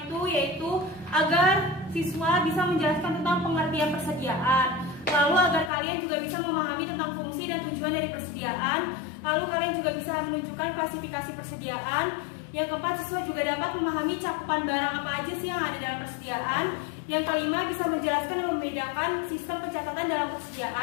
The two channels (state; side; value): drops out; right; at 5.7 s